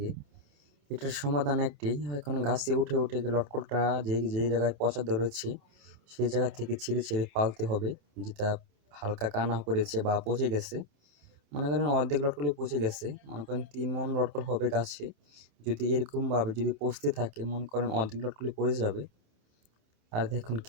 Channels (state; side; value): late; left; 27 ms